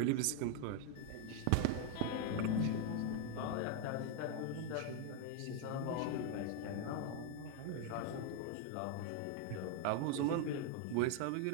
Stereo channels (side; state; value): both; different; correlation 0.01